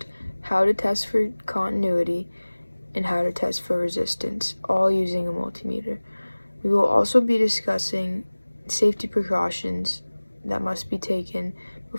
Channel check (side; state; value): both; inverted; correlation -1.00